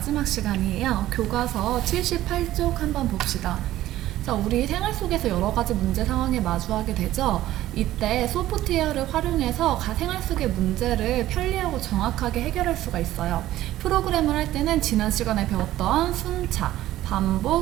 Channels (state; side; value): quieter; left; 14.5 dB